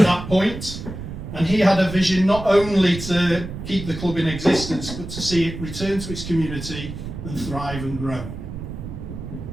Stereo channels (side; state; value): right; noise; rumble, 9 dB below the sound